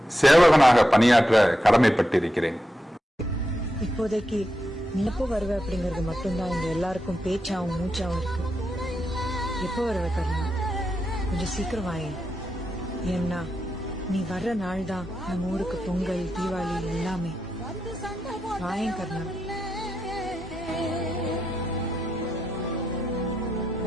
சேவகனாக பணியாற்ற கடமைப்பட்டிருக்கிறேன். இப்போதைக்கு நீ எப்போ வருவ அப்படிங்கறது மட்டும்தான் இங்க எல்லாருக்கும் பேச்சாவும் மூச்சாவும் இருக்கு. எப்போ வருவ கர்ணா? கொஞ்சம் சீக்கிரம் வாயே. ஏன்னா நீ வர்ற நாள் தான் நம்ம ஊருக்கு பொங்கல், தீபாவளி எல்லாமே. வாயேன் கர்ணா.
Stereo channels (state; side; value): normal; both; correlation 0.86